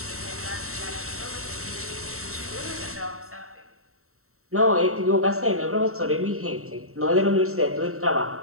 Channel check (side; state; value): left; late; 0.63 ms